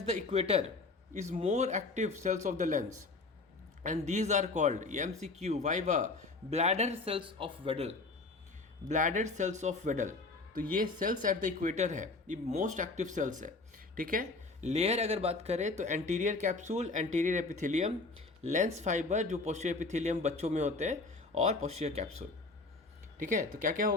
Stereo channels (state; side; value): quieter; right; 3.6 dB